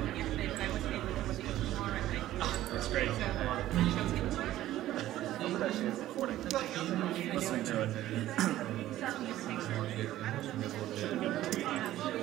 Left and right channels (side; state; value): left; quieter; 14.2 dB